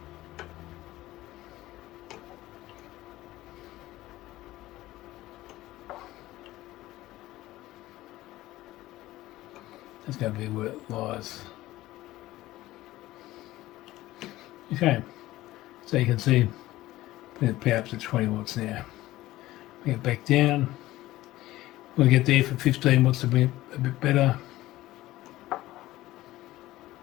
That's going to be where it lies. Okay, so you can see, put the power up to 20 watts now. Bring it back down. We'll get there for 15 watts to bring it a bit better.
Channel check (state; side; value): quieter; right; 16.6 dB